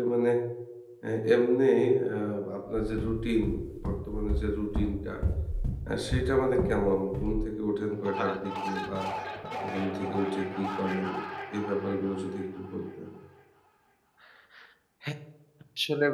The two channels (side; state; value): both; identical; correlation 1.00